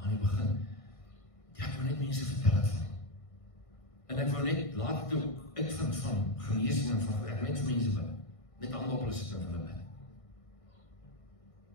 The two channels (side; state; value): right; late; 1.6 ms